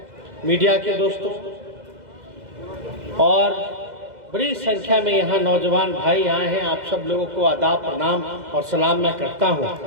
मीडिया के दोस्तों और बड़ी संख्या में यहाँ नौजवान भाई आए हैं, आप सब लोगों को आदाब, प्रणाम और सलाम मैं करता हूँ।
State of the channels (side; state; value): left; late; 2.0 ms